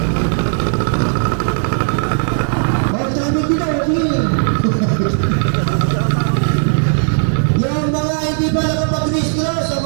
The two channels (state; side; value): silent; left; 60 dB below the other